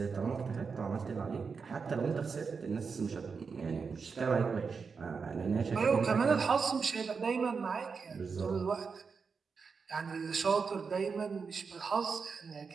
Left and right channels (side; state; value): left; quieter; 5.3 dB